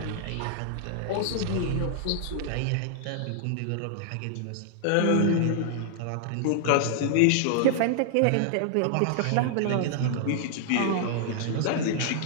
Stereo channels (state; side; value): different; both; correlation -0.01